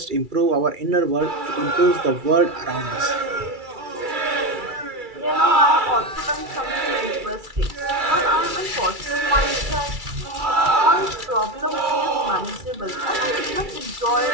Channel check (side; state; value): left; late; 2.3 ms